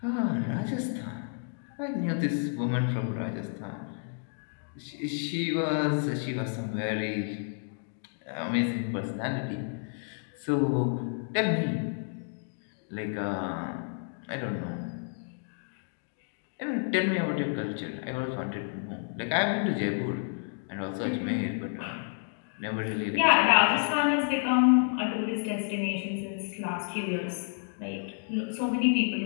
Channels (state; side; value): silent; right; 57 dB below the other